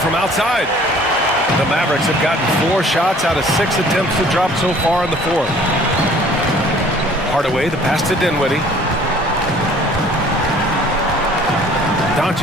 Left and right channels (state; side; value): normal; both; correlation 0.53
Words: outside. The Mavericks have gotten 4 shots out of 6 attempts to drop so far in the fourth. Hardaway, the pass to Dinwiddie.